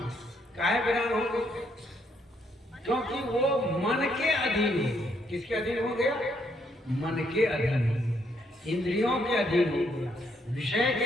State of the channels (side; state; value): both; normal; correlation 0.73